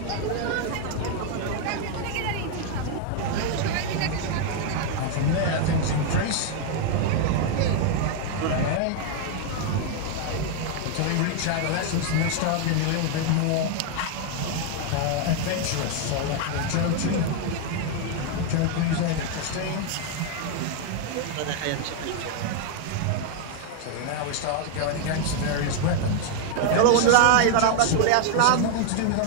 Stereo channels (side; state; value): both; different; correlation 0.00